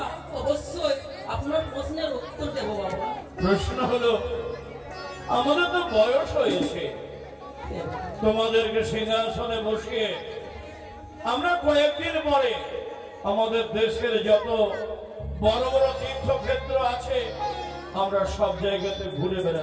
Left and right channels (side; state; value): both; identical; correlation 1.00